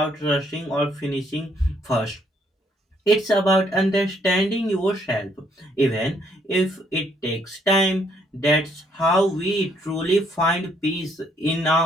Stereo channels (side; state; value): both; normal; correlation 0.69